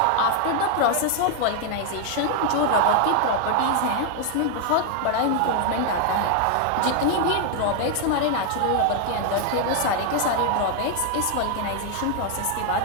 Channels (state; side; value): different; both; correlation 0.00